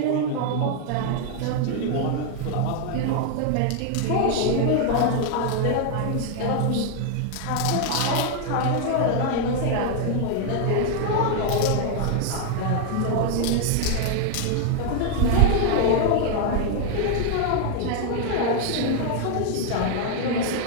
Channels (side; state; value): both; different; correlation 0.00